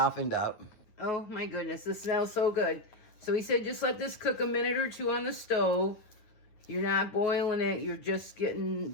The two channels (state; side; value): late; right; 9.6 ms